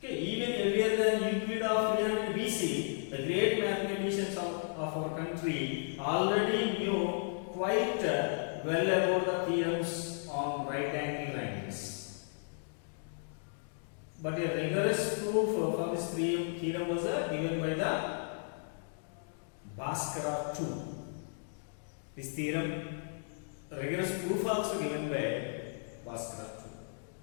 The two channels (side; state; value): right; silent; digital silence